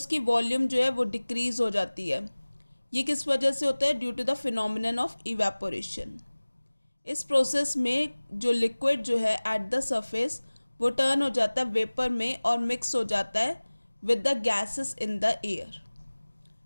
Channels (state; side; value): inverted; both; correlation -1.00